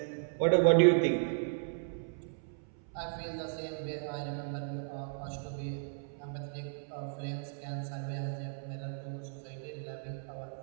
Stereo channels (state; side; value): silent; left; 55 dB below the other